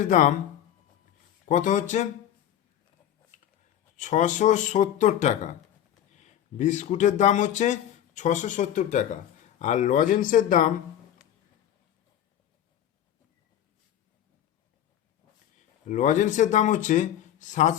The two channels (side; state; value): right; quieter; 10.9 dB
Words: দাম কত হচ্ছে? 670 টাকা। বিস্কুটের দাম হচ্ছে 670 টাকা। আর লজেন্সের দাম হচ্ছে